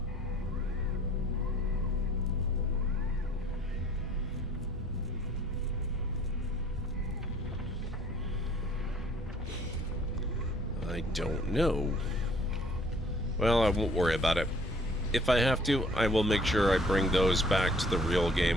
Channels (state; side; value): normal; both; correlation 0.56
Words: I don't know. Well, I won't worry about it. If I have to, I will make sure I bring those back to the real